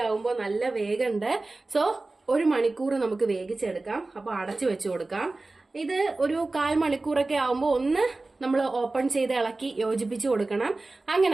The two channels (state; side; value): quieter; left; 3.2 dB